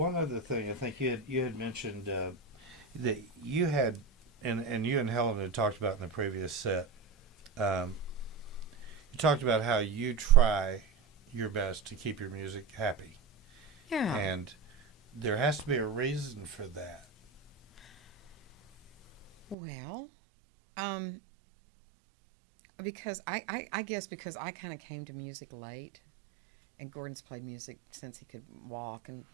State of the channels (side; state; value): left; drops out; at 19.6 s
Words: other thing. I think you had mentioned that you had, and you and Helen had talked about in the previous set. You talked about how you try your best to keep your music happy, Yeah. and there has to be a reason for that. Well, because I guess because I kind of came to music late, and Gordon's played music since he could walk and